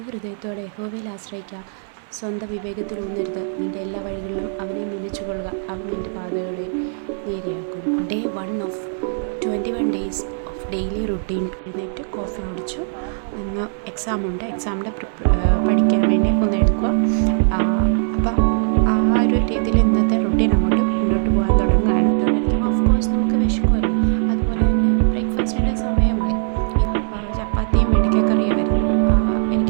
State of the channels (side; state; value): left; silent; digital silence